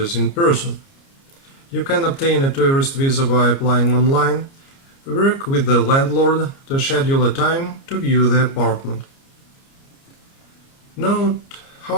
in person. You can obtain a tourist visa by applying online. Work with the landlord to schedule a time to view the apartment. Note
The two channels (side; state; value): right; late; 29 ms